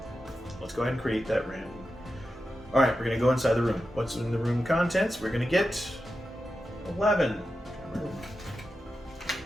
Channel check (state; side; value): normal; both; correlation 0.90